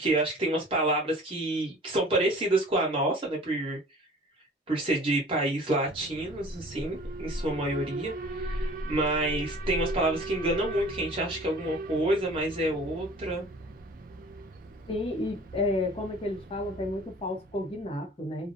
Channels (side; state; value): both; normal; correlation 0.46